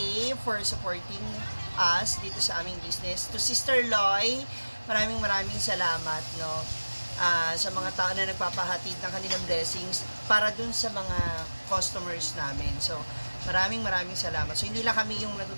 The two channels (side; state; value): both; inverted; correlation -1.00